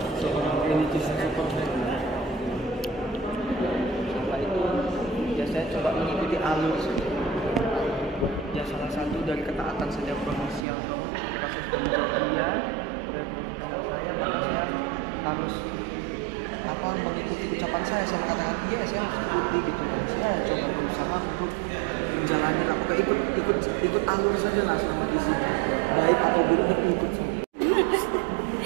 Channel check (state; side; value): drops out; left; at 10.7 s